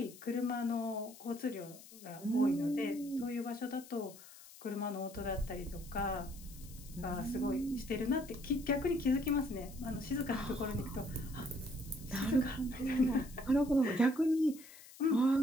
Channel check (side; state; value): left; noise; hiss, 19 dB below the sound